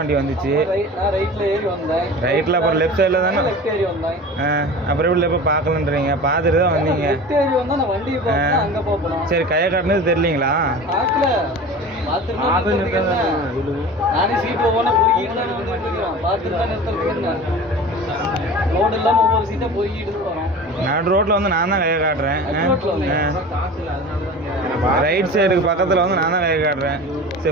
வந்துச்சு. ரைட்டில் அப்புறம் லெஃப்ட் சைடில் தானே. அப்புறம் எப்படி இப்போ பார்க்கலன்றீங்க? பார்த்துட்டு தான் வந்தீங்க. சரி கையை காட்டினது தெரியலீங்களா? நடு ரோட்டில் வந்து நான் தான் கையை காட்டுறேன். ரைட் சைடுக்கு பக்கத்தில் வந்து நான் தான் கையை காட்டுறேன்.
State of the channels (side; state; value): both; normal; correlation 0.36